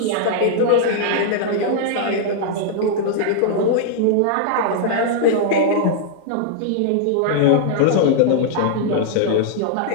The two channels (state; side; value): different; both; correlation -0.01